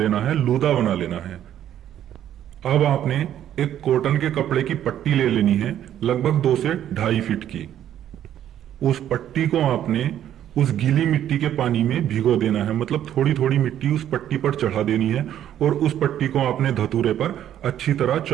है, लूदा बना लेना है। अब आपने एक कॉटन के कपड़े की पट्टी ले लेनी है, लगभग 2 से 2.5 फीट की। उस पट्टी को आपने उस गीली मिट्टी के पानी में भिगो देना है, मतलब थोड़ी थोड़ी मिट्टी उस पट्टी पर चढ़ा देनी है और उस पट्टी को आपने धतूरे पर अच्छी तरह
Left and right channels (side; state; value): left; quieter; 11.0 dB